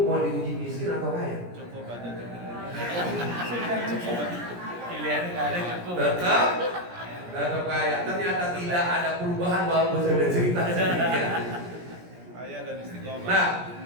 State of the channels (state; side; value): late; left; 17 ms